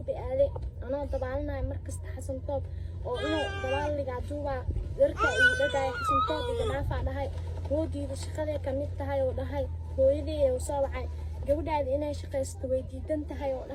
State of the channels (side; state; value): both; identical; correlation 1.00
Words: aaday anoo dabaalnahay markasta Xasan Toob oo inuu dabaaliga duuba darka uu dhagay Xasan Toob iganaaf dhahay hoodiida shaqada kamid tahay oo dhahay hooyadii oo soo wacay gabadhaada inay shaqaysto way diidan tahay oo